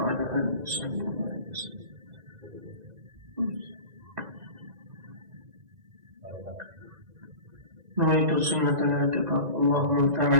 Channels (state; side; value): late; left; 2.0 ms